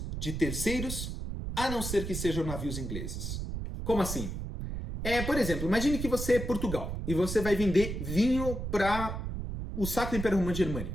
de terceiros, a não ser que sejam navios ingleses. Como assim? Por exemplo, imagine que você é Portugal e você vai vender vinho para o Sacro Império Romano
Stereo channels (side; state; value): right; noise; rumble, 5 dB below the sound